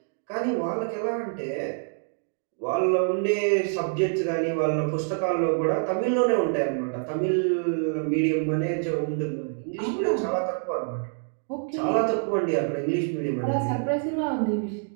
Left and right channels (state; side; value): silent; left; 59 dB below the other